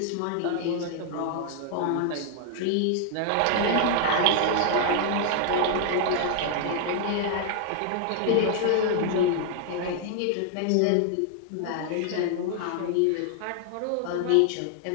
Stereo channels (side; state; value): both; different; correlation 0.00